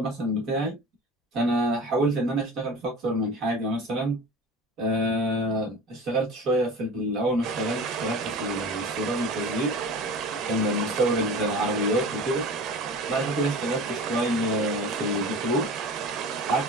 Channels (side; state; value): both; normal; correlation 0.35